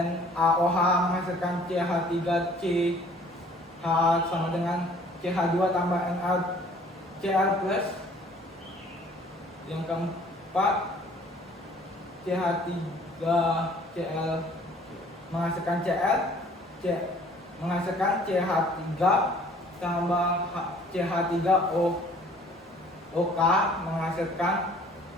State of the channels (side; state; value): both; normal; correlation 0.54